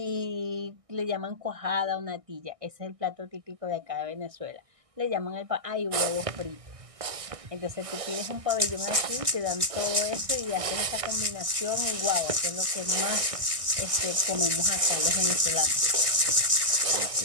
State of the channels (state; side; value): late; left; 1.6 ms